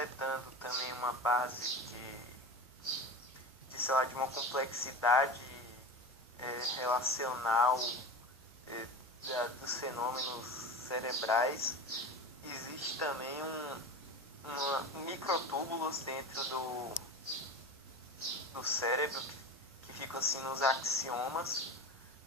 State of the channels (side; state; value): both; normal; correlation 0.29